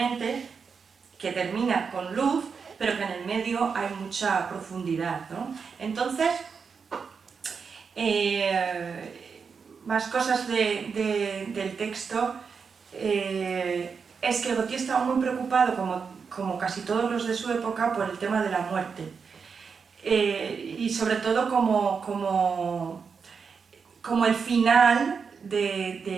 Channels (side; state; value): left; quieter; 5.7 dB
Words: que termina con luz, pero que en el medio hay mucha profundidad, ¿no? Entonces, más cosas del texto, es que Gautier estaba muy preocupado, como casi todos los de su época, por el tema de la muerte. Y sobre todo como el final